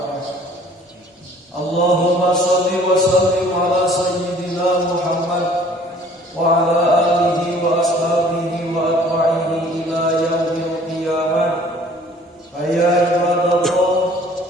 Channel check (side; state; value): both; normal; correlation 0.53